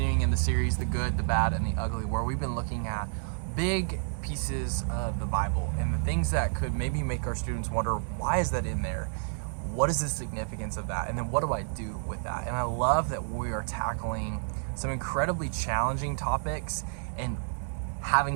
in the series, The Good, the Bad, and the Ugly, where we've been looking at big pieces of the Bible and the things that could maybe make our students wonder, why is that in there? What is the significance of that? And then what do I do with that? And I love that we are tackling some incredibly challenging topics and having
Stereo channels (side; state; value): left; silent; digital silence